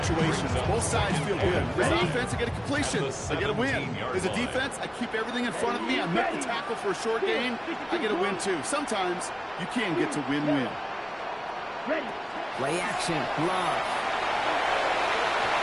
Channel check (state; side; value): identical; both; correlation 1.00